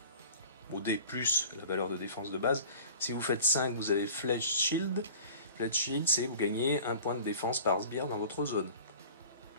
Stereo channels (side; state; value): both; inverted; correlation -0.43